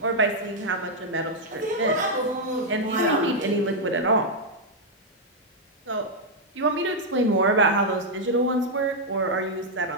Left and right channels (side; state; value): both; normal; correlation -0.02